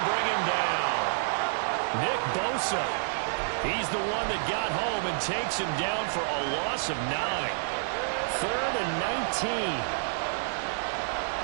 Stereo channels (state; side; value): silent; left; 59 dB below the other